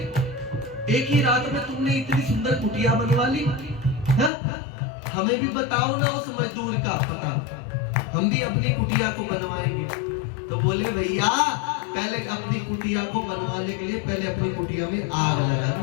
एक ही रात में तुमने इतनी सुंदर कुटिया बनवा ली, हाँ? हमें भी बताओ ना उस मजदूर का पता, हम भी अपनी कुटिया को बनवाएंगे। तो बोले भैया पहले अपनी कुटिया को बनवाने के लिए पहले अपनी कुटिया में आग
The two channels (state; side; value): drops out; right; at 4.3 s